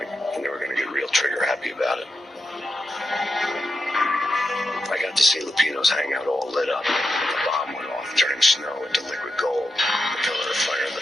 and they were going to get real trigger happy about it. I got to see Lupino's hangout all lit up. The bomb went off, turning snow into liquid gold. The pillar of fire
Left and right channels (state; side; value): normal; both; correlation 0.87